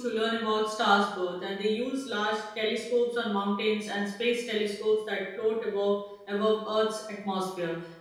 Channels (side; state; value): both; identical; correlation 1.00